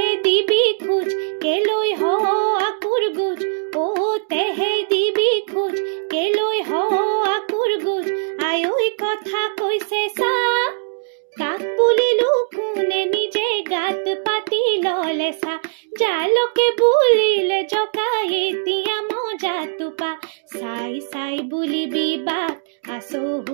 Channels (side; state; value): left; silent; digital silence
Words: দিবি খোজ কেলৈ হ আকুৰ গুজ অ তেহে দিবি খোজ কেলৈ হ আকুৰ গুজ আয়ৈ কথা কৈছে চা কাক বুলিলো কোনে নিজে গাত পাতি ললে চা জালকে বুলিলে জকাই এতিয়া মজা টোপা চাই চাই বুলিবি বাট